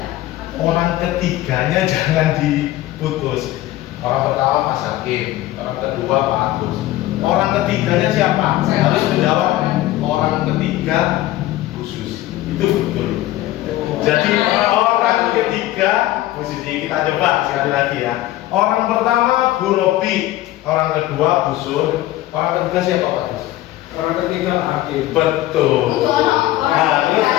Orang ketiganya jangan diputus. Orang pertama Mas Hakim, orang kedua Pak Agus. Orang ketiganya siapa? Harus menjawab. Orang ketiga khusus. Itu betul. Jadi orang ketiga posisi kita coba sekali lagi ya. Orang pertama Bu Robi, orang kedua Bu Sun, orang ketiga siapa Pak Gus? Orang ketiga Hakim. Betul. Harus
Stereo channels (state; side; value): quieter; right; 15.5 dB